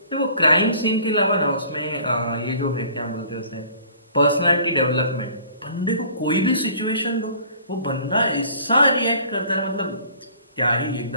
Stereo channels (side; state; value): both; inverted; correlation -0.51